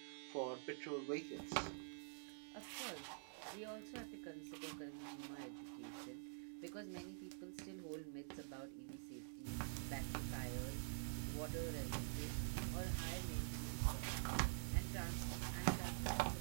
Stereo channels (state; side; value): silent; left; digital silence